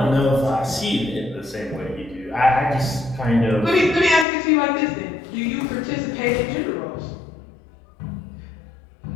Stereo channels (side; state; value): right; drops out; at 4.2 s